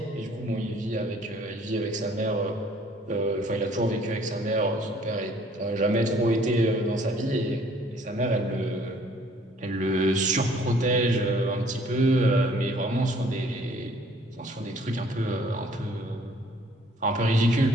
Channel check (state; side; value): normal; both; correlation 0.58